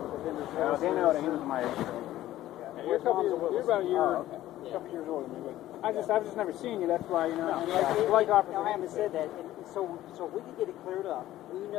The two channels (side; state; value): right; quieter; 14.3 dB